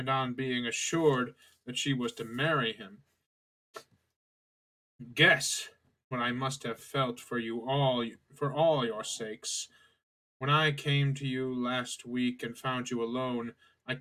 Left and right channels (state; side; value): identical; both; correlation 1.00